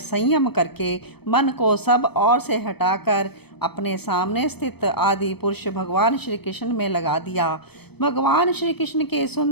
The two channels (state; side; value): late; right; 0.97 ms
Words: करके मन को सब ओर से हटाकर अपने सामने स्थित आदि पुरुष भगवान श्री कृष्ण में लगा दिया। भगवान श्री कृष्ण के